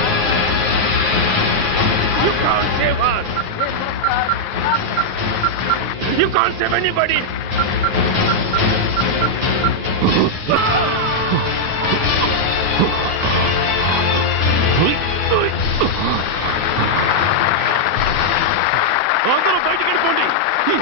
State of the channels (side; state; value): left; late; 9.6 ms